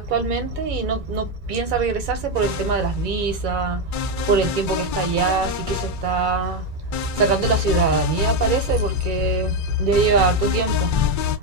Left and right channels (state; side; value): late; left; 2.3 ms